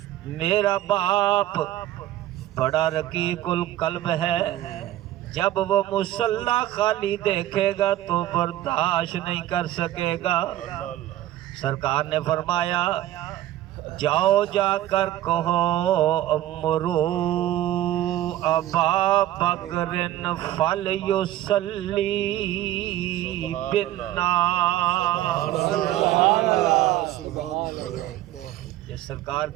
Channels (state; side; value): quieter; left; 14.0 dB